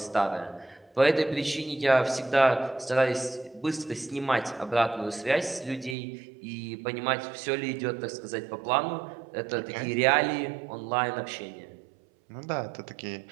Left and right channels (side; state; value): left; drops out; at 6.0 s